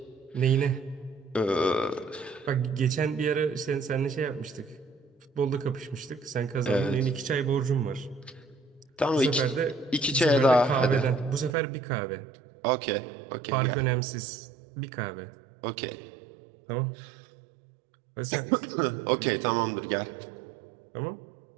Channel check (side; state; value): left; drops out; at 11.6 s